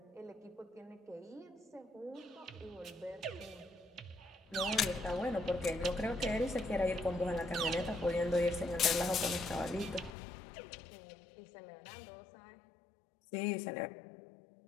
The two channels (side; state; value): right; drops out; at 10.1 s